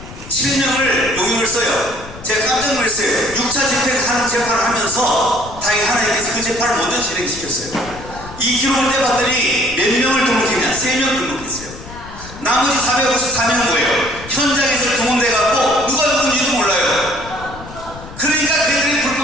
용역을 써요. 제가 깜짝 놀랐어요. 6차 집행하는 재판을 하면서 다행히 하나님께서 그 재판을 먼저 진행시켰어요. 이 기록을 떼봤더니 몇 명을 등록했냐? 3명 등록했어요. 나머지 454명은 뭐예요? 현장에서 동원돼갖고 누가 누군지도 몰라요. 그러니까 걔들이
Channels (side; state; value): left; noise; rumble, 15 dB below the sound